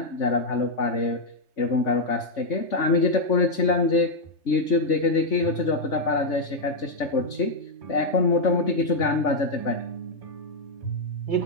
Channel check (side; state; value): right; late; 3.3 ms